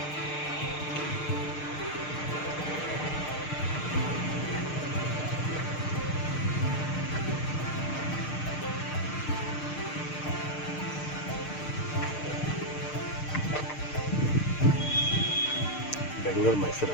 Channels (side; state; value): right; late; 6.6 ms